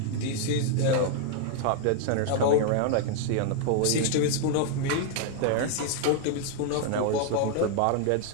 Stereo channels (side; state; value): both; different; correlation 0.00